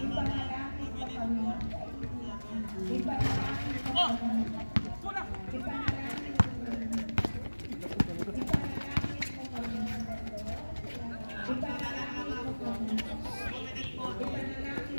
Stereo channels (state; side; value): inverted; both; correlation -1.00